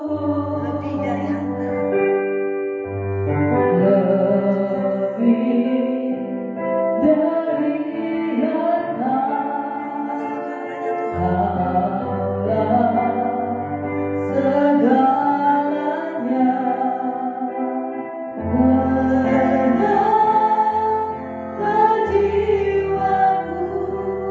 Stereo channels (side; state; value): both; identical; correlation 1.00